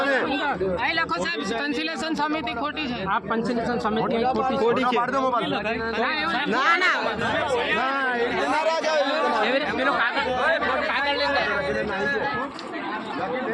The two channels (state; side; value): identical; both; correlation 1.00